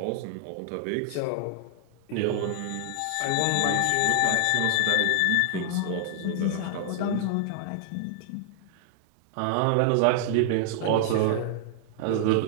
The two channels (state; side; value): different; both; correlation -0.01